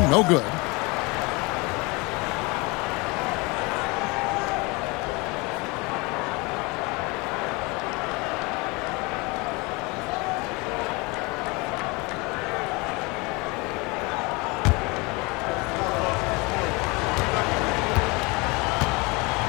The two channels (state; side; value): quieter; right; 26.5 dB